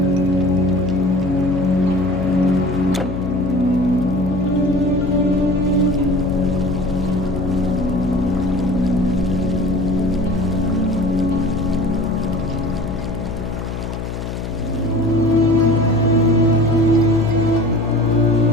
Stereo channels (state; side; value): noise; left; hum, 6 dB below the sound